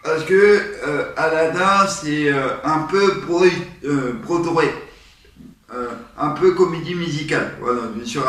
parce que Aladdin c'est un peu Broadway, un peu comédie musicale. Voilà, je me suis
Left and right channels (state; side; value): identical; both; correlation 1.00